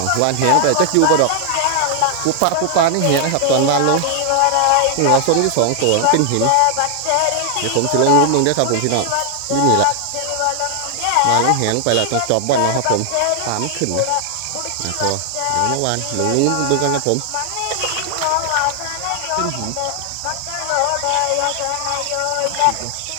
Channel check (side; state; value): both; different; correlation 0.00